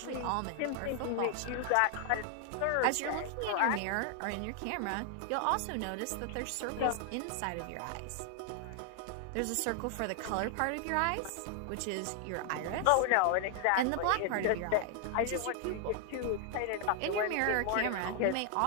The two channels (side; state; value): both; different; correlation 0.00